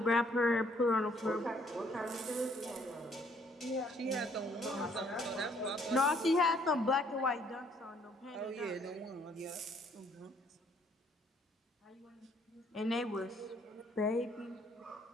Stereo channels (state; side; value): normal; both; correlation 0.65